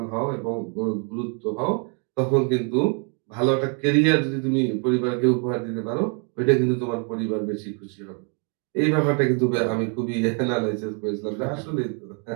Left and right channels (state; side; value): quieter; left; 39.2 dB